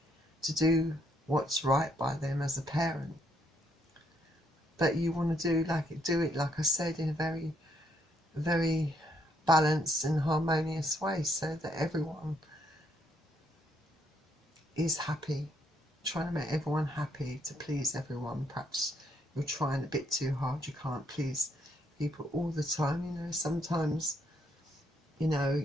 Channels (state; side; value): normal; both; correlation 0.72